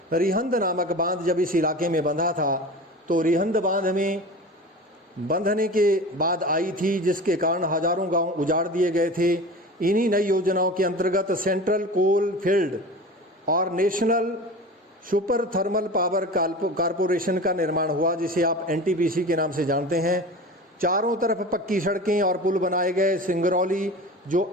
रिहंद नामक बांध जब इस इलाके में बंधा था तो रिहंद बांध में बंधने के बाद आई थी, जिसके कारण हजारों गांव उजाड़ दिए गए थे। इन्हीं नई योजनाओं के अंतर्गत सेंट्रल कोल फील्ड और national super thermal power corporation का निर्माण हुआ, जिसे आप एनटीपीसी के नाम से जानते हैं। चारों तरफ पक्की सड़कें और पुल बनाए गए। सिंगरौली जो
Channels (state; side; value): normal; both; correlation 0.34